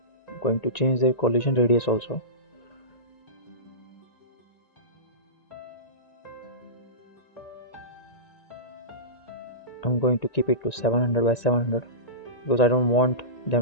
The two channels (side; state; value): right; late; 1.9 ms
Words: going to change the collision radius also. I'm going to keep it to 700 by 700 because I don't want